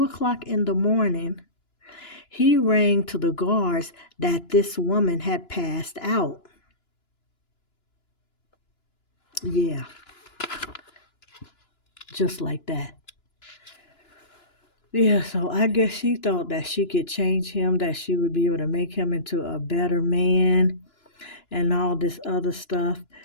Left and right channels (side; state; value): right; late; 2.9 ms